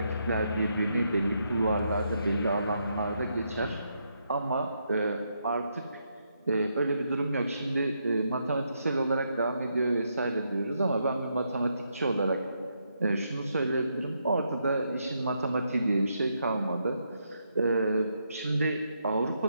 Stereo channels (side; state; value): both; inverted; correlation -0.79